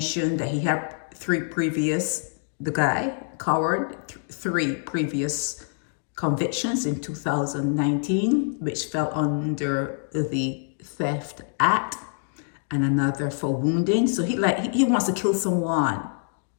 that he had three previous convictions in 2019, which fell under the Theft Act, and another for wounding. So he wants to kill someone.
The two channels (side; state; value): right; silent; digital silence